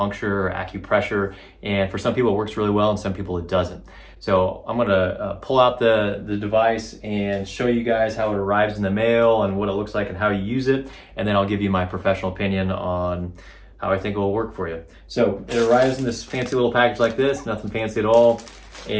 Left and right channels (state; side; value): identical; both; correlation 1.00